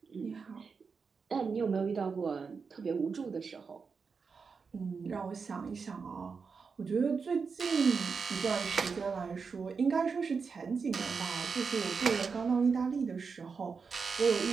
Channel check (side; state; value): left; quieter; 5.3 dB